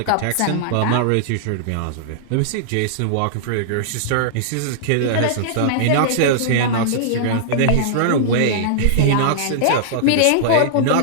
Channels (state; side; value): different; both; correlation -0.01